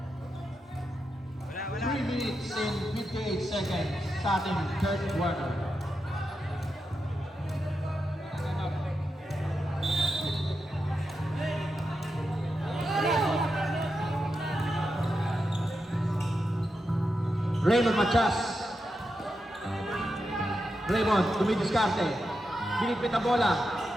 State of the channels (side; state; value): both; normal; correlation 0.87